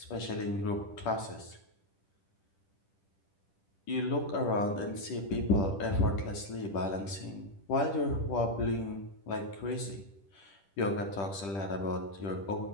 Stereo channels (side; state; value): right; late; 10 ms